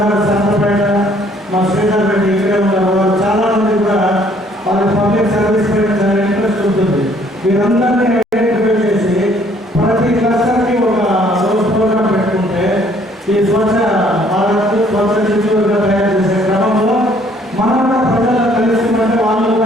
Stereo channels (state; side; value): normal; both; correlation 0.62